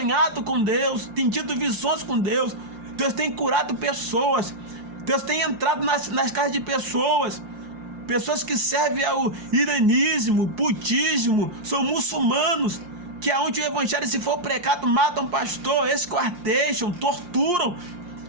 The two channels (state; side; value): late; left; 5.7 ms